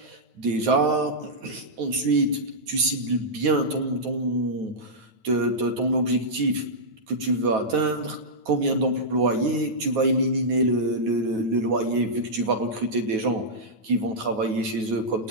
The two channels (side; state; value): left; late; 9.3 ms